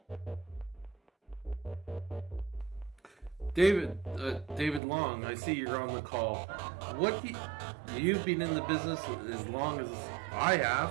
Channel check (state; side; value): drops out; left; at 4.8 s